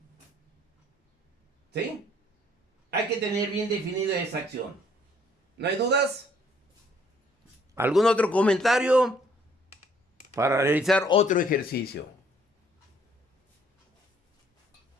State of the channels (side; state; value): both; normal; correlation 0.63